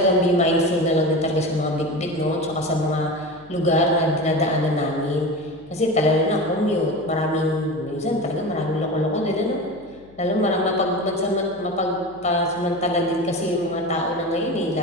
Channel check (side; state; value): left; noise; hum, 26 dB below the sound